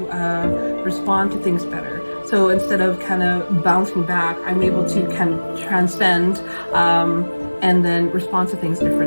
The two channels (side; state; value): both; inverted; correlation -1.00